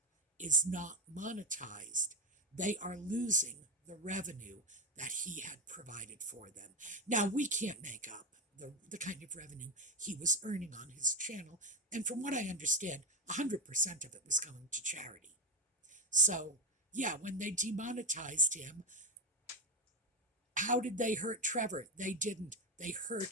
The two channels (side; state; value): both; normal; correlation 0.11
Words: is not monetized, they are losing the revenue that he had provided for them. Now, we can't make up the kind of revenue he was earning on his channel, and from what I understand, 100% of it was going to charity. So, yeah, when they demonetized him, how did they hurt Trevor? They didn't. They hurt